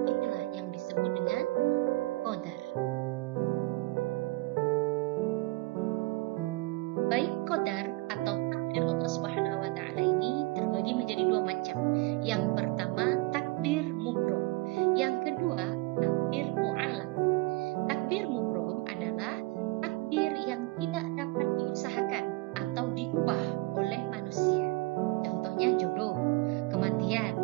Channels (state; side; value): quieter; left; 22.7 dB